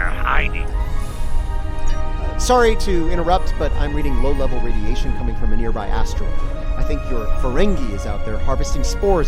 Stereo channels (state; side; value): identical; both; correlation 1.00